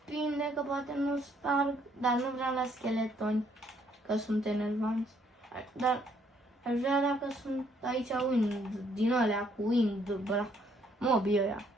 că poate nu sparg, dar nu vreau la scheletoni, că sunt enervanți. Dar aș vrea dacă sunt aici wind, din alea cu wind, bla, mobii ăia.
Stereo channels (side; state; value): both; normal; correlation 0.68